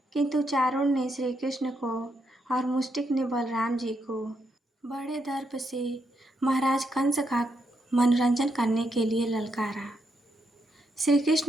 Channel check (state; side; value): normal; both; correlation 0.80